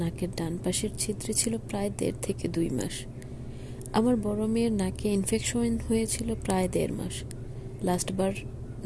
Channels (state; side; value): identical; both; correlation 1.00